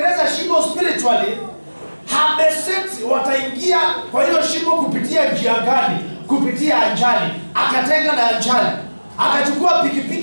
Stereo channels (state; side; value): inverted; both; correlation -1.00